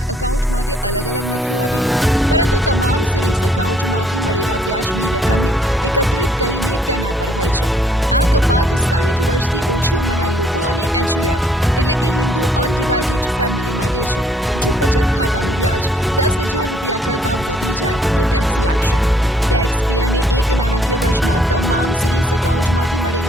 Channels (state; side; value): normal; both; correlation 0.65